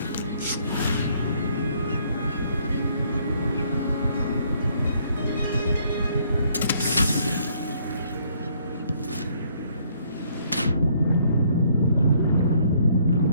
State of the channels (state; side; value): inverted; both; correlation -0.66